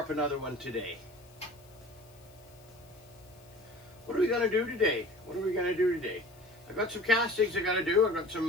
up another one today. What are we gonna do today? I've got some castings I gotta do. I've got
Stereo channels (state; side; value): noise; left; hiss, 27 dB below the sound